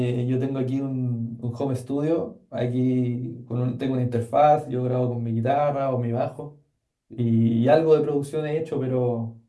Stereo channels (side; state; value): both; identical; correlation 1.00